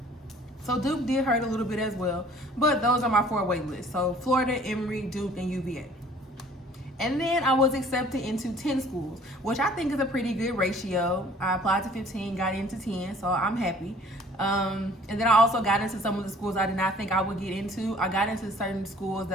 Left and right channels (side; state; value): both; normal; correlation 0.54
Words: So Duke did hurt a little bit as well. But those are my 4 wait lists. So Florida, Emory, Duke, and UVA. And then I was accepted into 10 schools, which I think is a pretty good ratio. I applied to 15, got into 10, so I'm happy. And then I also got into some of the schools I did not think I would get into. I got into certain schools